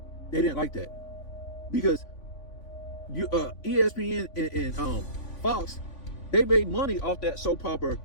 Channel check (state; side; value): late; right; 3.5 ms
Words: they didn't like that. Because ESPN and Fox, they made money off that soap opera